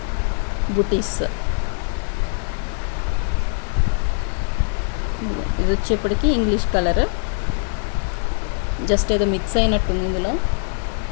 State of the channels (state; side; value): silent; right; digital silence